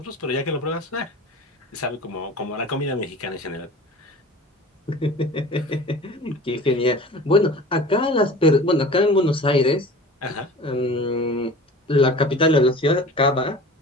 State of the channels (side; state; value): both; normal; correlation 0.39